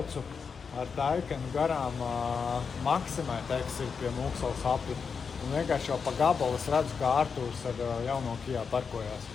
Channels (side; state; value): right; quieter; 5.8 dB